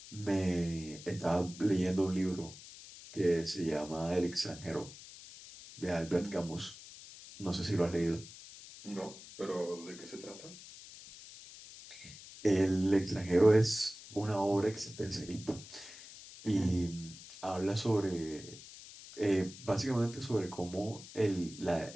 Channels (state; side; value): noise; left; hiss, 16 dB below the sound